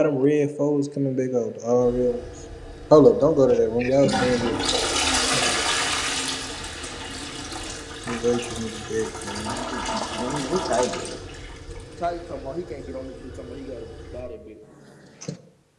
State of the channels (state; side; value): identical; both; correlation 1.00